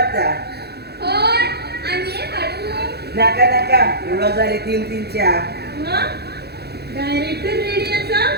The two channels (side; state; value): left; late; 0.47 ms